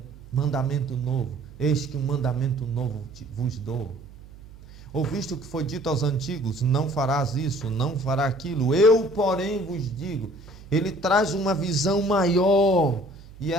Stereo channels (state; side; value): noise; right; hum, 19 dB below the sound